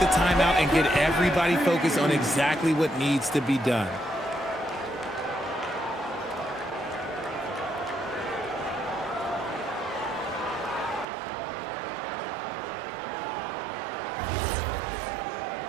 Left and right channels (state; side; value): drops out; left; at 11.1 s